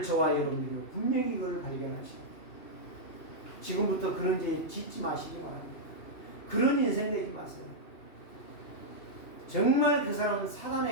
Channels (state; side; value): late; right; 2.8 ms